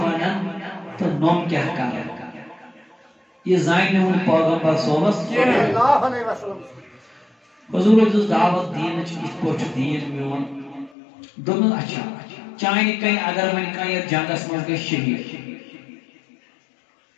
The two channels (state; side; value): drops out; right; at 11.0 s